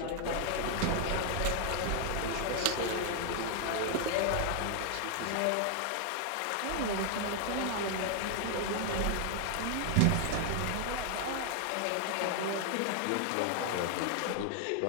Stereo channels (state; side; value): different; both; correlation 0.00